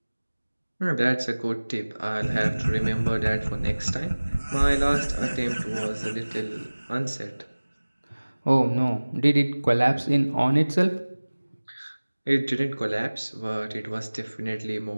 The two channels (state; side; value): inverted; both; correlation -1.00